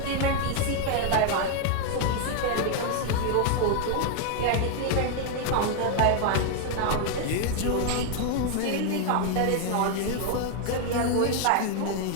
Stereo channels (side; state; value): both; different; correlation 0.00